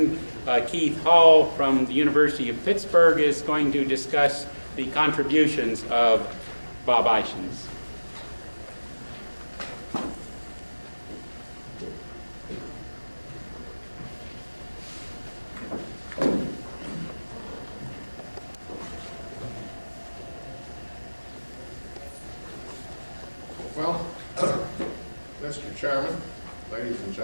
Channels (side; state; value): both; inverted; correlation -1.00